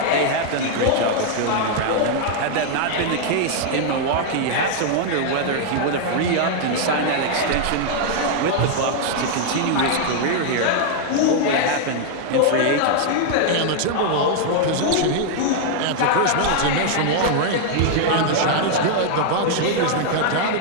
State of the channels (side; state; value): both; different; correlation 0.00